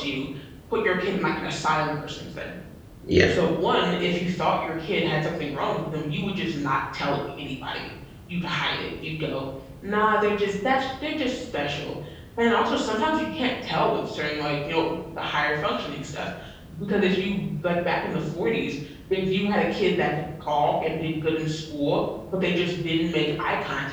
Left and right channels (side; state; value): both; identical; correlation 1.00